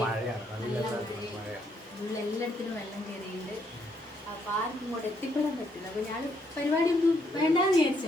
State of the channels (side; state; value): both; normal; correlation 0.73